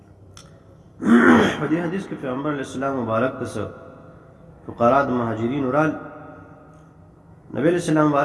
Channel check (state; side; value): identical; both; correlation 1.00